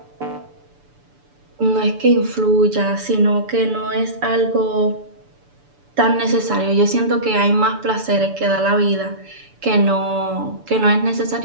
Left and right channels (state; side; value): late; left; 6.9 ms